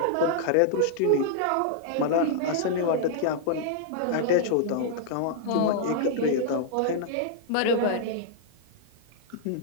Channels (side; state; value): both; different; correlation -0.01